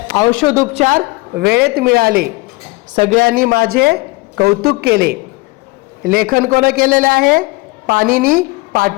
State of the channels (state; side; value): quieter; right; 24.1 dB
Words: औषधोपचार वेळेत मिळाले। सगळ्यांनी माझे कौतुक केले। लेखन कोण केलेले आहे? पाणिनी